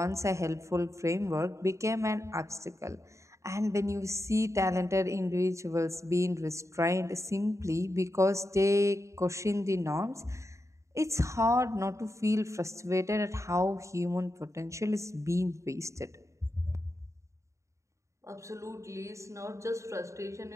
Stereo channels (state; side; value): late; left; 0.14 ms